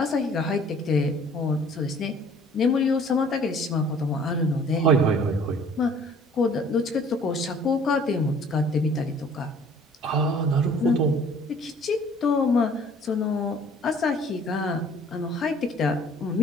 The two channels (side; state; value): both; normal; correlation 0.54